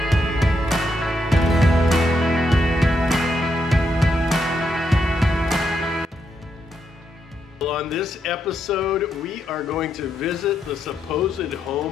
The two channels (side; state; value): both; normal; correlation 0.80